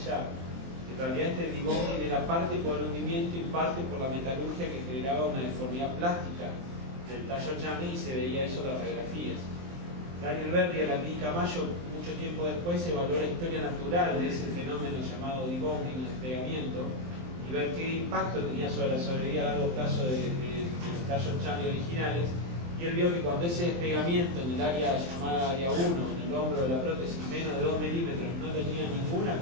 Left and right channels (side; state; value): left; late; 23 ms